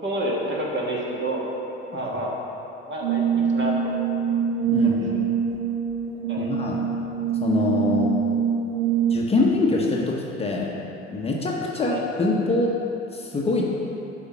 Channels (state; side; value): normal; both; correlation 0.38